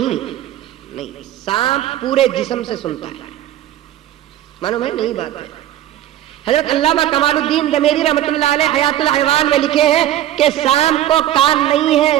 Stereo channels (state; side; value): quieter; left; 12.8 dB